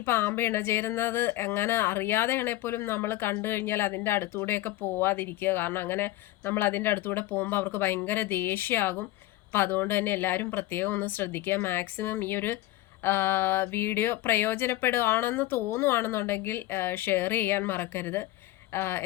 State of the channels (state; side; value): quieter; right; 16.4 dB